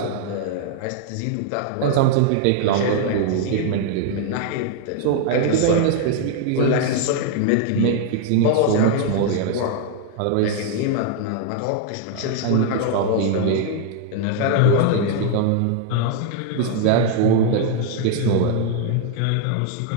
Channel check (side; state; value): both; different; correlation 0.00